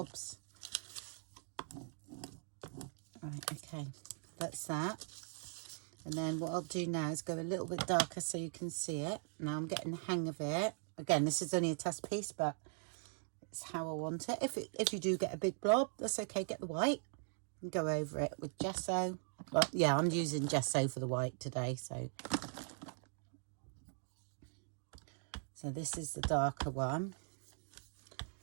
Right, okay, that's that. And then what I'll do now is go a little bit darker so you can see it. Now I'm getting the hang of it. Again, this is only a test piece, but it's how I want it. If you do get a big blob, that's okay. Get the white and go over it with gesso. Well, yeah, I'm using gesso for the white today. So this is the darker one.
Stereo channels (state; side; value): silent; left; 51 dB below the other